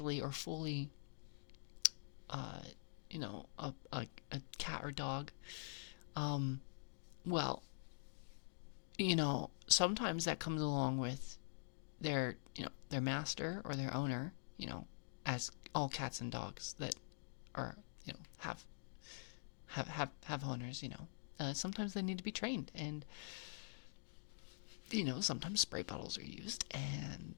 or fully, a cat or dog. Well, sometimes that comes along with their master or their owner, as all cats and dogs that are, have owners, sometimes they need to be trained, and sometimes spray bottles are used,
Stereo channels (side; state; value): right; silent; digital silence